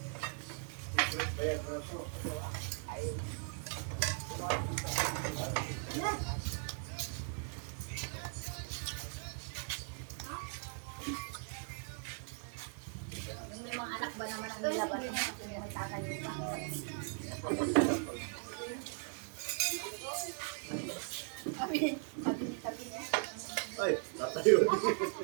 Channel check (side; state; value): left; silent; 52 dB below the other